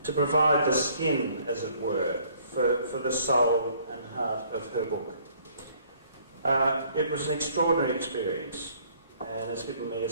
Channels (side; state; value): both; inverted; correlation -0.60